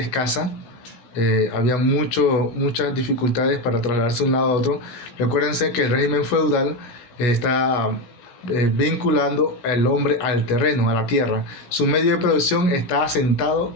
Había muchas dificultades para trasladarse de un lado a otro. Recuérdense que el régimen feudal está vinculando al hombre al terreno, a la tierra. Su medio de producción está asentado,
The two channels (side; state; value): right; late; 17 ms